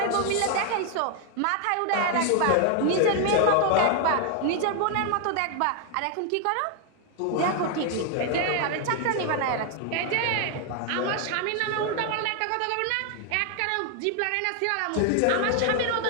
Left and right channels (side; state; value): both; different; correlation 0.00